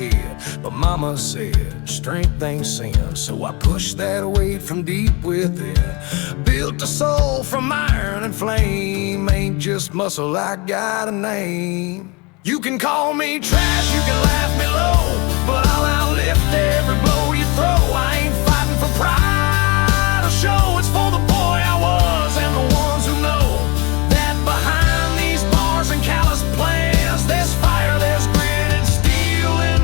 But mama said, strength ain't sin, so I pushed that weight from deep within. Built a soul from iron and flame, ain't just muscle, I got a name. You can call me trash, you can laugh me low, but I'll outlift every blow you throw. I ain't fighting for pride or show, it's for the boy I was and the ones who know that behind these bars and callous plans, there's fire, there's grit and steel in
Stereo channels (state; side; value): quieter; right; 27.4 dB